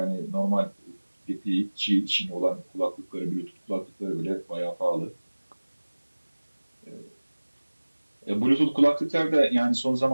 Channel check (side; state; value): both; inverted; correlation -1.00